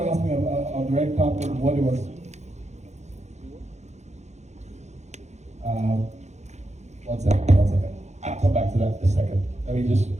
asked me on the red carpet what it was. One second. I'll come back to that in a second. Let me just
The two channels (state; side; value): late; left; 0.33 ms